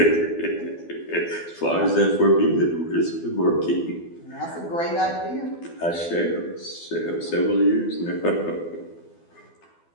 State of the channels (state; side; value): late; right; 12 ms